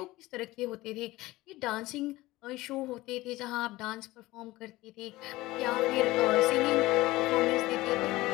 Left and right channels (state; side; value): quieter; right; 18.7 dB